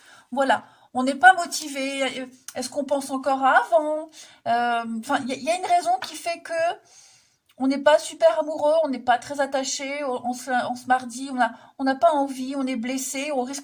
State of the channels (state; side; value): identical; both; correlation 1.00